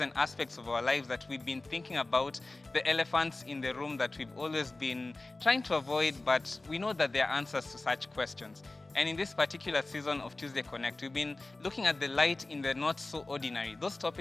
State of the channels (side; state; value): right; quieter; 3.1 dB